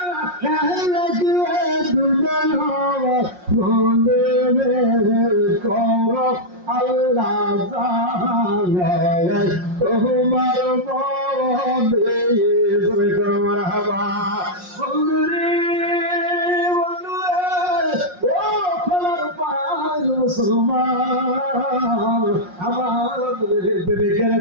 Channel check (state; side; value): late; left; 5.6 ms